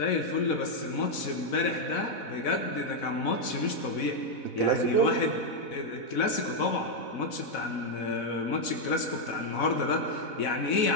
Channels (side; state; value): right; late; 4.1 ms